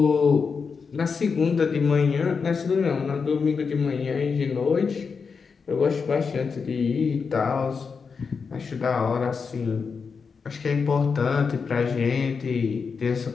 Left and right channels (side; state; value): right; quieter; 5.5 dB